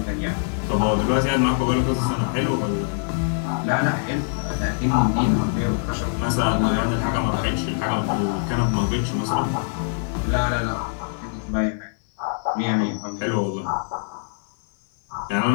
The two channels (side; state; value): right; silent; 58 dB below the other